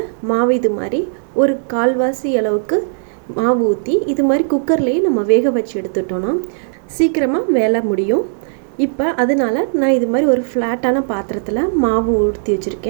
மாவு இது மாதிரி ஒரு கால்வாசி அளவுக்கு மாவு ஊற்றி இது மாதிரி குக்கர்லேயே நம்ம வேக வச்சு எடுத்துட்டோன்னா சீக்கிரமாக வேலை முடியும். இப்போ அதனால் நான் இது மாதிரி ஒரு ஃப்ளாட்டான பாத்திரத்தில் மாவு ஊற்றி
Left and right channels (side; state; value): left; silent; 68 dB below the other